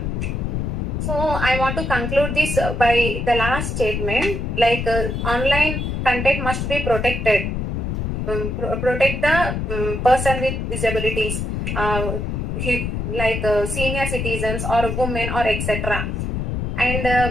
So I want to conclude this by the last statement, like online content must be protected. Protect the person with disabilities, like senior citizens or women or etc.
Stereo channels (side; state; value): left; noise; rumble, 2 dB below the sound